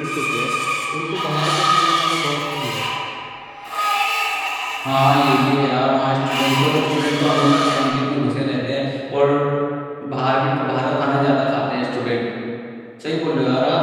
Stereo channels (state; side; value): identical; both; correlation 1.00